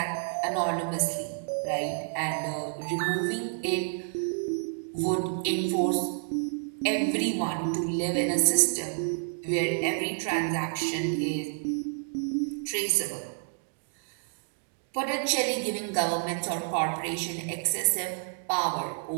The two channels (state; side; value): silent; left; digital silence